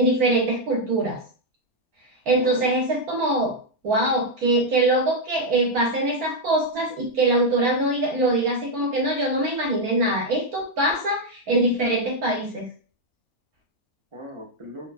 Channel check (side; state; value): both; normal; correlation 0.00